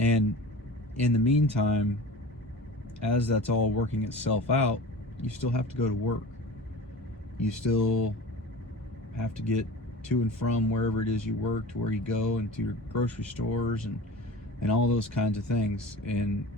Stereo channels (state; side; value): normal; both; correlation 0.36